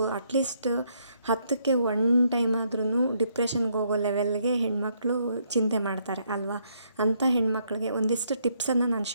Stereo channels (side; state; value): both; inverted; correlation -0.72